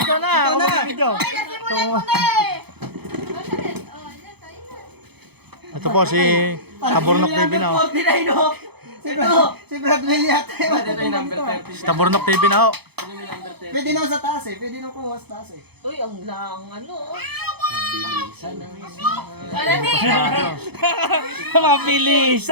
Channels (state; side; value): late; left; 0.98 ms